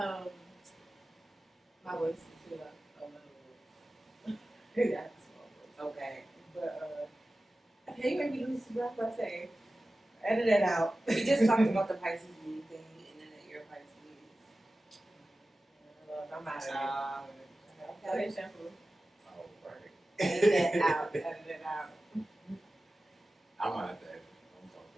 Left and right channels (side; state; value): both; normal; correlation 0.95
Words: my voice is too like a little. Yeah, small voice. Okay. But okay, you made me lose the breath by saying. Edit it out. We just talked about the Pisces moon thing, and then that you're Pisces. I'm out of it. Okay. Okay, shampoo. Oh, right. Edit it out. Edit it out. I'm out of that.